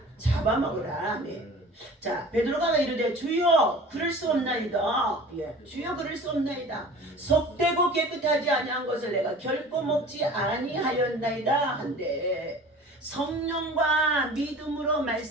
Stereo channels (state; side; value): normal; both; correlation 0.42